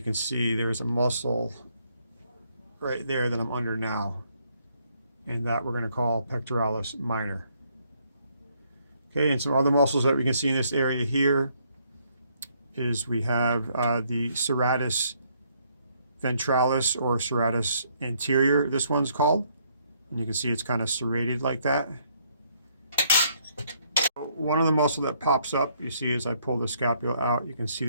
see there's a muscle right there that I'm under now. And that we're going to call pectoralis minor. Okay, and some other muscles that we can see in this area here is we have the serratus ventralis, or serratus anterior, this one's called. And you can see it's kind of serrated like that. One of the muscle that pops up, you see as I pull the scapula out, you can see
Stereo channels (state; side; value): inverted; both; correlation -0.70